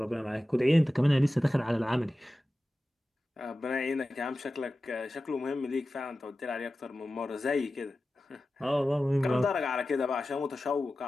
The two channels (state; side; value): normal; both; correlation 0.94